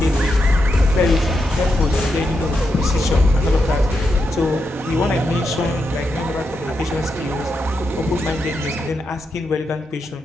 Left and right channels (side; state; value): both; normal; correlation 0.84